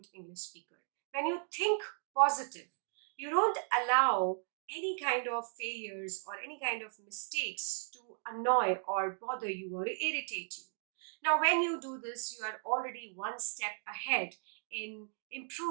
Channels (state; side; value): silent; left; 54 dB below the other